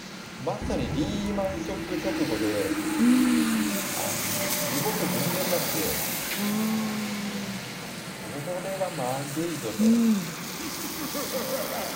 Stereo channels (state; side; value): identical; both; correlation 1.00